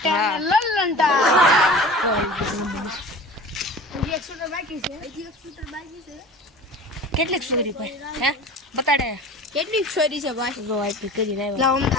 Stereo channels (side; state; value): both; normal; correlation 0.39